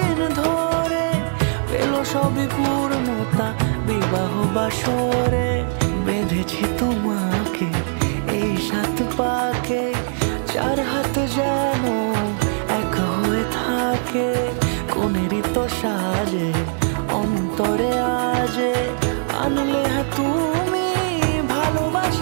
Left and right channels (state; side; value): silent; left; digital silence